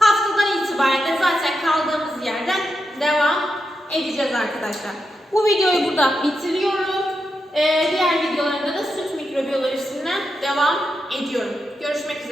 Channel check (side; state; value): both; normal; correlation 0.86